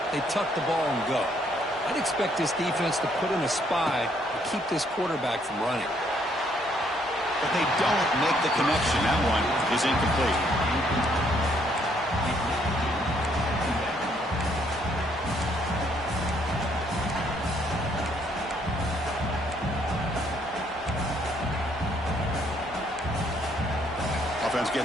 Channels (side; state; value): both; normal; correlation 0.68